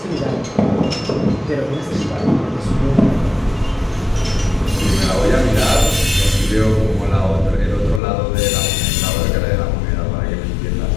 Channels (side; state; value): right; drops out; at 8.0 s